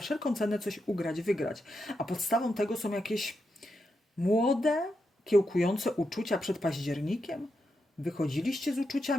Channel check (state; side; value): normal; both; correlation 0.85